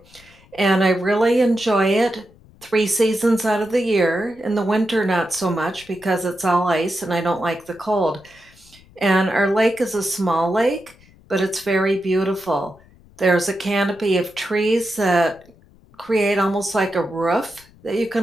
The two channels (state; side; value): noise; left; rumble, 27 dB below the sound